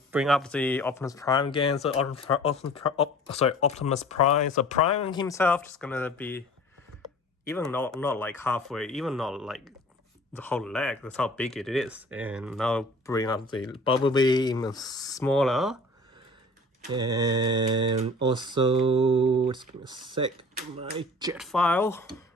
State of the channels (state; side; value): normal; both; correlation 0.46